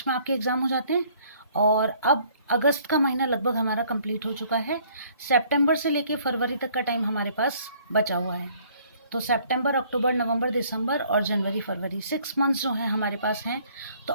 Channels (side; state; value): both; inverted; correlation -0.60